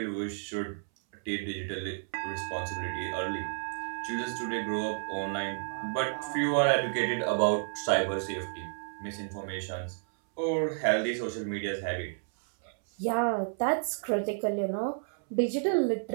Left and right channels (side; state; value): left; silent; 57 dB below the other